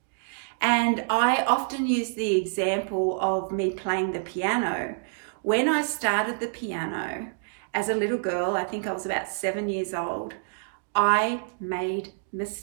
And I often use the example of me playing the piano. When I started the piano as a little girl, I think I was about 7 years old, I made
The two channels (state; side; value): silent; left; digital silence